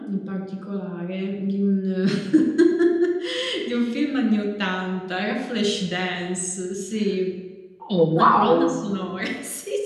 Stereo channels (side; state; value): both; identical; correlation 1.00